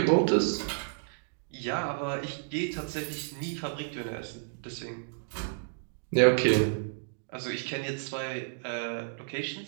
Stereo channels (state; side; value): silent; left; digital silence